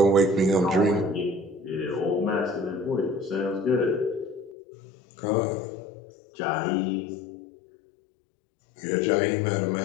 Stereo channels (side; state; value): right; drops out; at 4.5 s